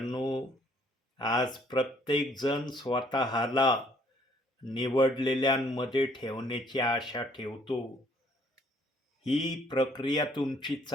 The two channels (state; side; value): normal; both; correlation 0.63